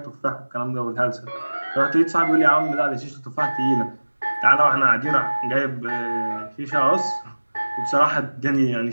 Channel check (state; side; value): inverted; both; correlation -1.00